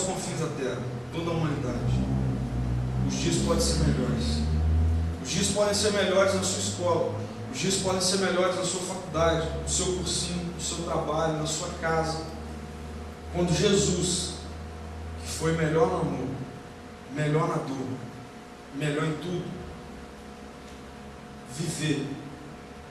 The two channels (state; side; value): identical; both; correlation 1.00